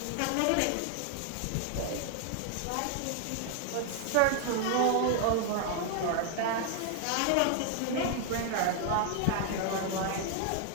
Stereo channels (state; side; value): different; both; correlation 0.00